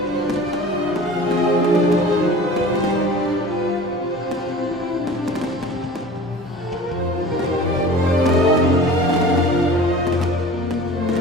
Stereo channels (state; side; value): normal; both; correlation 0.41